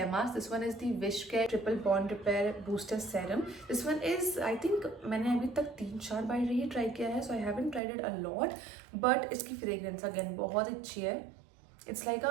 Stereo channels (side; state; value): left; drops out; at 7.8 s